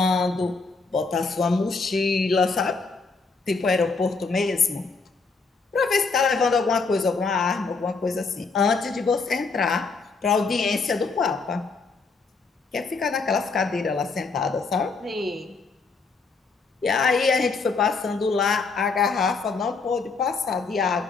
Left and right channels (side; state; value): right; quieter; 4.4 dB